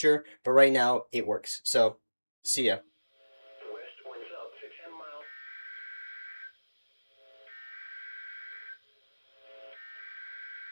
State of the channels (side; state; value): both; inverted; correlation -1.00